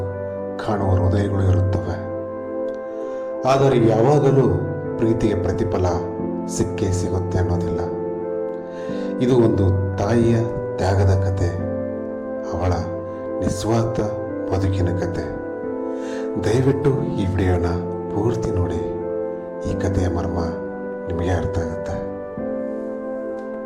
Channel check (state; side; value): identical; both; correlation 1.00